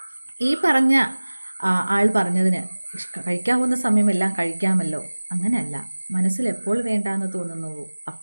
ഈ പറഞ്ഞ ആൾ പറഞ്ഞതിന് കഴിക്കാവുന്ന സമയമെല്ലാം കഴിക്കാമല്ലോ, അങ്ങനെയല്ല. മനസ്സിൽ എപ്പോൾ വേണ്ടാന്ന് തോന്നുന്നുവോ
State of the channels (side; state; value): both; inverted; correlation -1.00